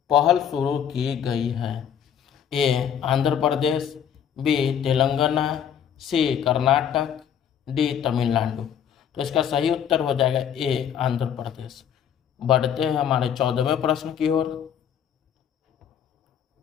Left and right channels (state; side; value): quieter; right; 8.7 dB